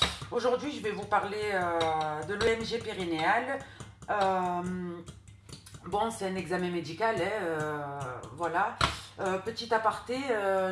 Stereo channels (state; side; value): identical; both; correlation 1.00